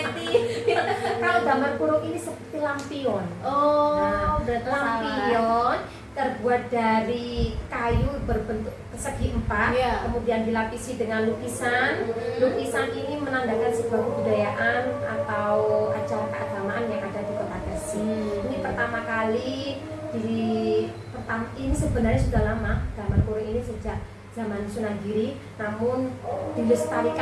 Kalau gambar kurung ini seperti lampion. Oh, Nah, berarti salah. lampion terbuat dari kayu berbentuk persegi empat, Iya. kemudian dilapisi dengan lukisan. Lukisan ini menandakan sebuah kebudayaan atau acara keagamaan yang ada di Kota Gresik. Ini pertama kali ini sebenarnya sudah lama, gambar kurung ini sejak zaman Sunan Giri, namun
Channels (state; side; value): identical; both; correlation 1.00